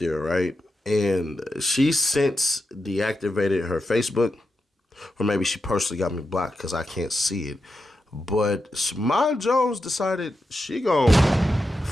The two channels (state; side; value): normal; both; correlation 0.88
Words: right? And she since deactivated her Facebook, or maybe she personally got me blocked because I can't see it. But Shimon Jones decided she gonna